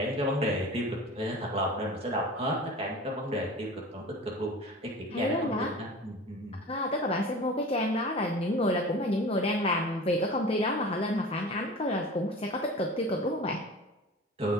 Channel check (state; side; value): normal; both; correlation 0.37